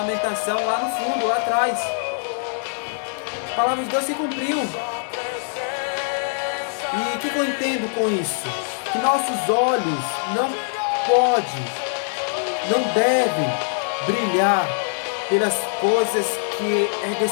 lá no fundo, lá atrás. A palavra de Deus se cumpriu. E o que eu entendo com isso? Que nossos olhos não devem brilhar pelas coisas que é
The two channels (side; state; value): right; silent; digital silence